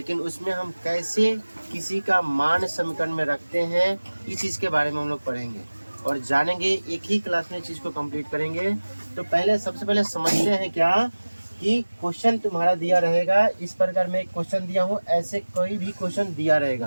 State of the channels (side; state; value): both; inverted; correlation -1.00